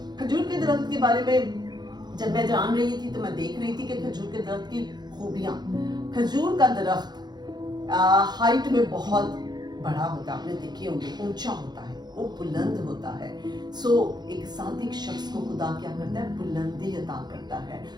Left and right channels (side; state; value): left; late; 0.20 ms